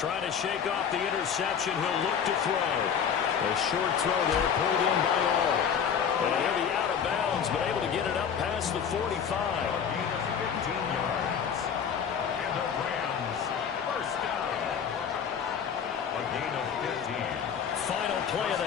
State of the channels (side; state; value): right; quieter; 7.5 dB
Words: Trying to shake off the interception. He'll look to throw. A short throw there, pulled in by all. And he'll be out of bounds, but able to get it up past the 45. 15 yards. And the Rams, first down. A gain of 15. Final play of